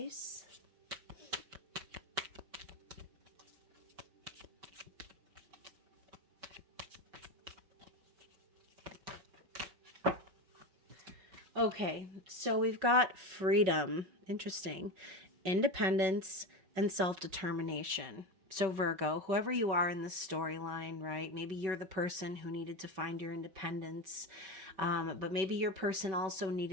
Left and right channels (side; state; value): left; late; 5.2 ms